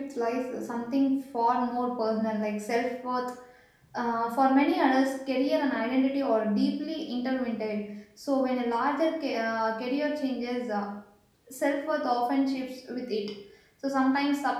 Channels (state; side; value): identical; both; correlation 1.00